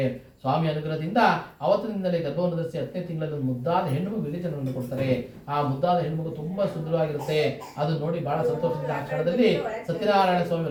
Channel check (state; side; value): identical; both; correlation 1.00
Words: ಸ್ವಾಮಿ ಅನುಗ್ರಹದಿಂದ ಅವತ್ತಿನಿಂದಲೇ ಗರ್ಭವನ್ನು ಧರಿಸಿ 10ನೇ ತಿಂಗಳಲ್ಲಿ ಒಂದು ಮುದ್ದಾದ ಹೆಣ್ಣು ವಿವೇಚನವನ್ನು ಕೊಡ್ತಾರೆ. ಆ ಮುದ್ದಾದ ಹೆಣ್ಣು ತುಂಬಾ ಸುಂದರವಾಗಿರುತ್ತೆ. ಅದು ನೋಡಿ ಬಹಳ ಸಂತೋಷದಿಂದ ಆ ಕ್ಷಣದಲ್ಲಿ ಸತ್ಯನಾರಾಯಣ ಸ್ವಾಮಿ